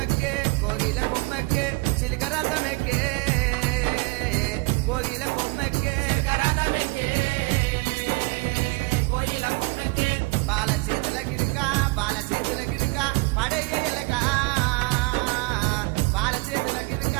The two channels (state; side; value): quieter; left; 26.8 dB